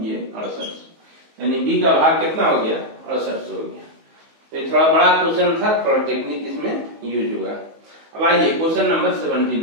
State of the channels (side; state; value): left; late; 19 ms